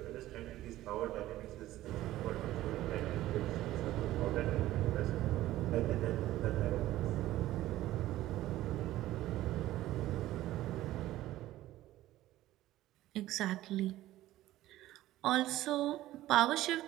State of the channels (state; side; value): quieter; left; 15.1 dB